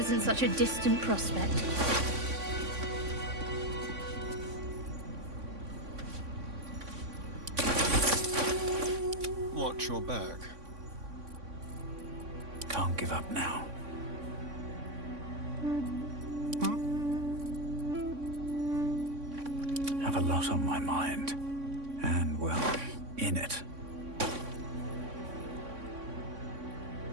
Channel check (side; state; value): left; late; 3.6 ms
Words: such a distant prospect. Watch your back. Can't give up now. Have a lot on my mind. And, well, in it.